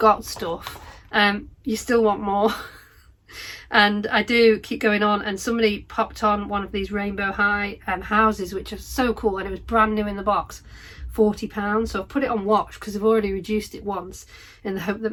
stuff, you still want more. And I do keep going on, and somebody popped on one of these Rainbow High houses, which are so cool, and it was brand new in the box, £40. So I've put it on watch because I've already reduced it once, in the hope that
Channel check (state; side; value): identical; both; correlation 1.00